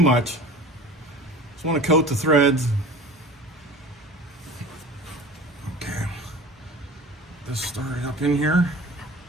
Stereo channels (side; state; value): both; normal; correlation 0.40